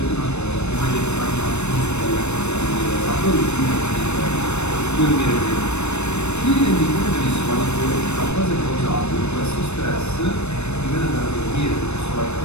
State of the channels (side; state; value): right; late; 0.81 ms